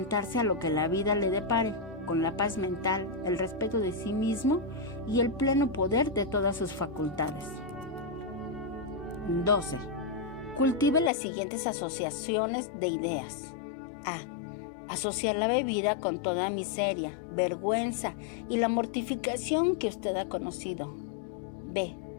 a lo que la vida le depare, con la paz mental, el respeto de sí mismo y el pleno poder de todas sus facultades. 12. Cultive las siguientes asociaciones de ideas. A. Asociar la bebida con toda miseria, vergüenza y la mortificación que usted ha conocido. B.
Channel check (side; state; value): right; drops out; at 11.1 s